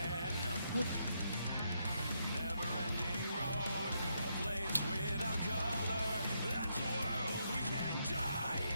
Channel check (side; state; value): both; inverted; correlation -0.79